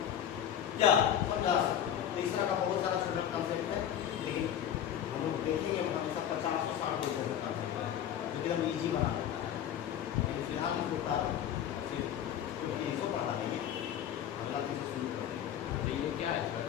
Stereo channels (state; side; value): quieter; right; 9.9 dB